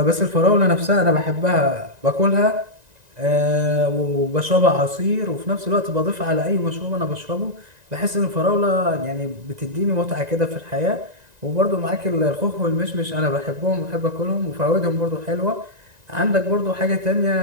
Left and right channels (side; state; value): left; late; 1.9 ms